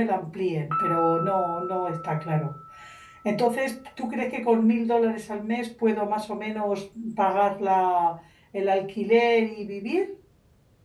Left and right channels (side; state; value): both; identical; correlation 1.00